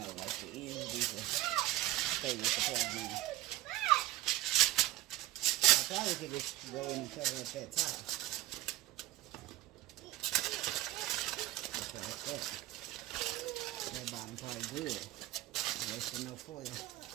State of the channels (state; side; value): quieter; left; 16.1 dB